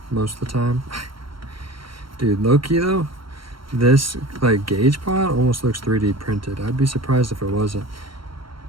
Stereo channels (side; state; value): left; late; 0.74 ms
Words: most of the time. Dude, low-key though, this like gauge pod almost looks 3D printed. I'd be surprised if it wasn't.